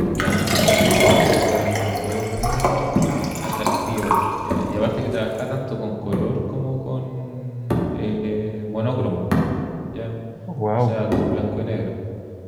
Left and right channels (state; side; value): identical; both; correlation 1.00